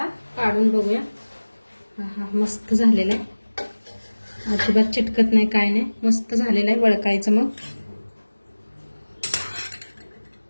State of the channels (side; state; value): both; inverted; correlation -1.00